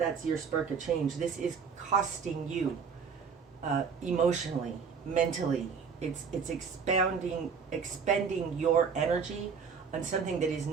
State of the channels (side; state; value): left; quieter; 6.0 dB